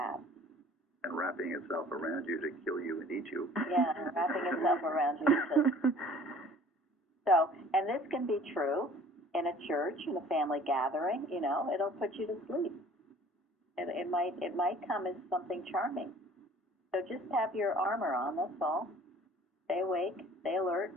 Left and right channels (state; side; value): normal; both; correlation 0.51